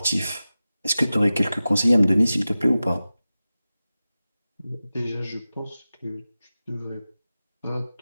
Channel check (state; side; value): inverted; both; correlation -0.95